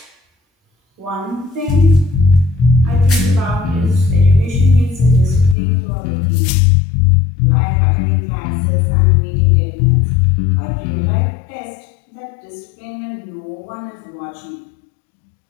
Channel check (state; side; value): drops out; right; at 5.6 s